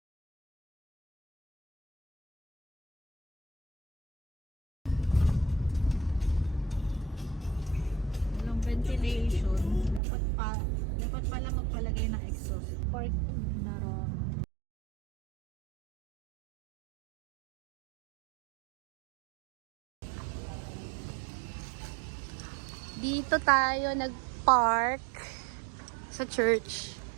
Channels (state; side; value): drops out; left; at 10.0 s